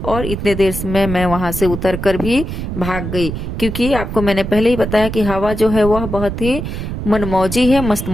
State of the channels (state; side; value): noise; right; rumble, 5 dB below the sound